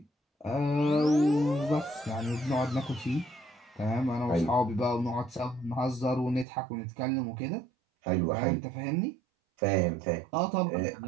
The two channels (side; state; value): left; drops out; at 6.5 s